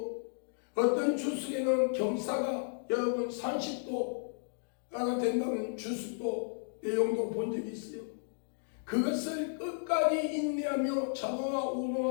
어떤 주석에는 경사가 여러분 30도가 된다는 주석도 내용도 본 적이 있어요. 그것을 끝까지 인내하며 자노와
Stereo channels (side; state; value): right; silent; digital silence